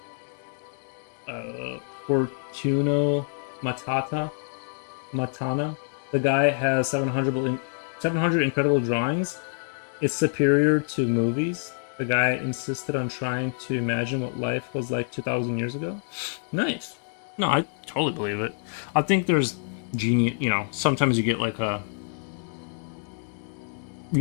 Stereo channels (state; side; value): silent; right; digital silence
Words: Fortuno Matana. The guy has 700 incredible drawings. It's superior to movies. The guy insisted on trying to imagine what life was like 2,000 years ago. Nice. No, I totally believe it. I think there's genius. You know, sometimes you get like a,